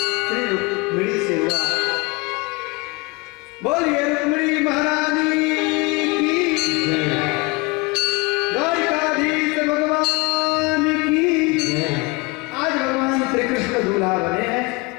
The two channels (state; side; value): quieter; right; 26.1 dB